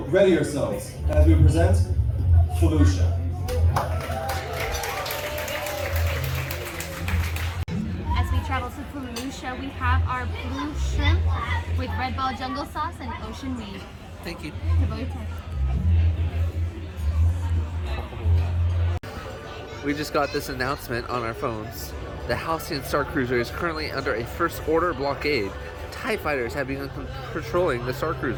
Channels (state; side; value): identical; both; correlation 1.00